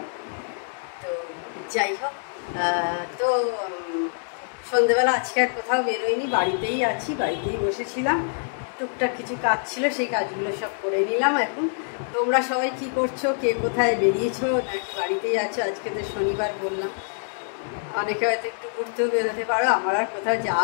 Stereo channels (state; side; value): silent; right; digital silence